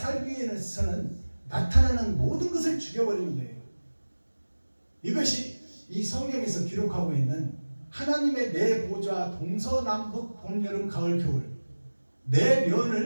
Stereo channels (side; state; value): both; inverted; correlation -1.00